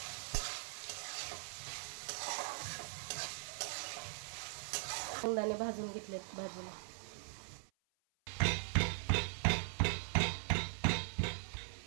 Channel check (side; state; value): left; silent; 51 dB below the other